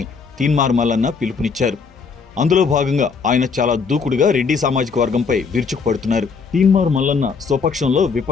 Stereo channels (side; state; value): right; quieter; 5.3 dB